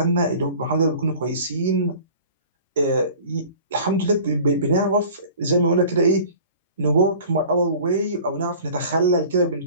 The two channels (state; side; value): inverted; both; correlation -0.45